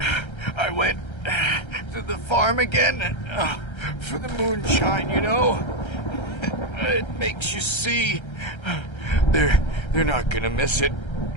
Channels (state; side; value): late; right; 1.3 ms